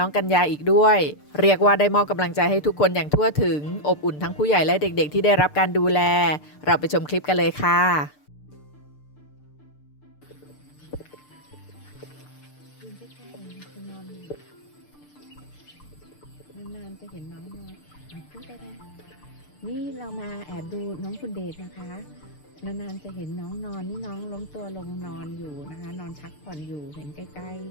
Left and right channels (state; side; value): late; right; 6.7 ms